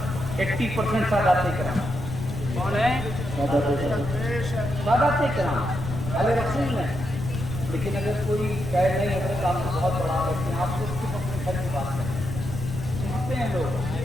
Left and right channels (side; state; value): left; noise; rumble, 6 dB below the sound